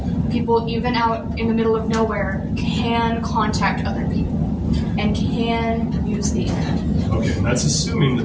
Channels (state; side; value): identical; both; correlation 1.00